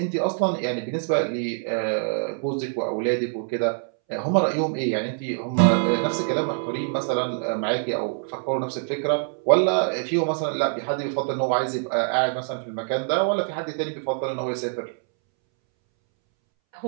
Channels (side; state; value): left; silent; 62 dB below the other